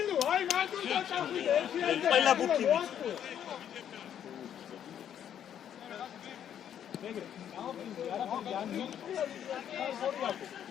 აი მანდ უნდა წავიდე ყველა ბუქი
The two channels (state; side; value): quieter; right; 9.6 dB